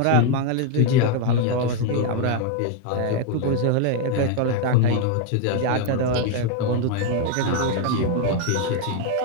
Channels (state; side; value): different; both; correlation 0.01